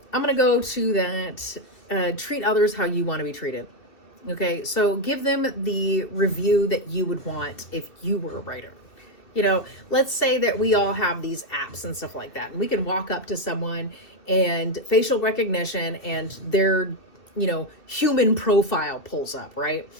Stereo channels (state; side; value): late; right; 2.6 ms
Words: I'm going to go to that, treat others how you want to be treated. Okay, so give them the review that you would want if you were a writer. You know, let's say that we all have these apps and stuff like that, and we can walk up to someone and facial recognition and their, you know, human profile pulls up, right?